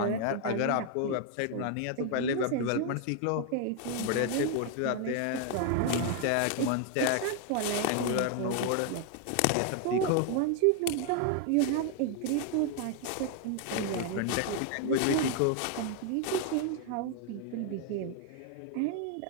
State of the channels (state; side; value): different; both; correlation 0.01